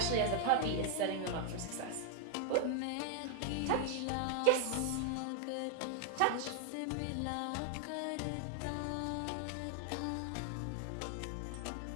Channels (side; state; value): both; different; correlation 0.00